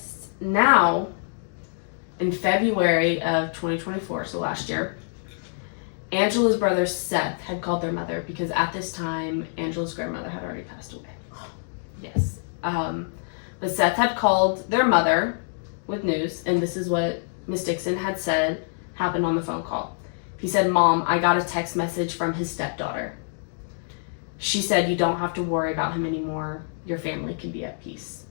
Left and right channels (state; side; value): silent; right; digital silence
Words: Now, in February of 2024, so last year, Angela's brother Seth had called their mother because at this time Angela's grandmother had already passed away. Yes. But Seth had called their mother with news, and this is what Miss Dixon had said happened on the phone call. He said, "Mom, I got a text message from his stepdaughter. She said you don't have to worry about him anymore. Your family can be at peace."